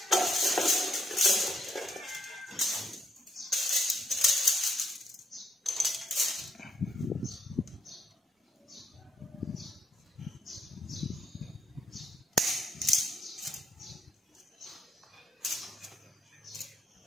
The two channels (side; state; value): both; normal; correlation 0.76